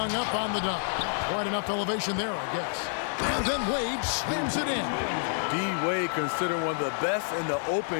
up on the dunk. Quite enough elevation there, I guess. And then Wade slams it in. D-Wade, considered one of the best in the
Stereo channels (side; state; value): right; silent; digital silence